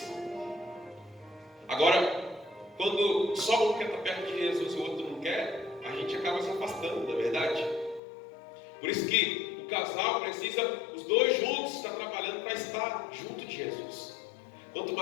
Agora, quando só um quer estar perto de Jesus e o outro não quer, a gente acaba se afastando, não é verdade? Por isso que o casal precisa, os dois juntos, estar trabalhando para estar junto de Jesus. Quanto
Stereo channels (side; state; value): right; drops out; at 8.0 s